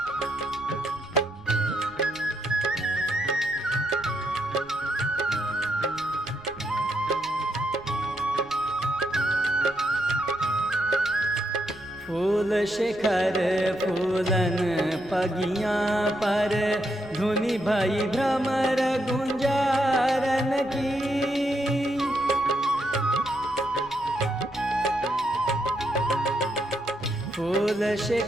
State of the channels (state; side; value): noise; right; rumble, 22 dB below the sound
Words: फूल शिखर फूलन पगियाँ पर धुनि भई भ्रमर गुंजारन की फूल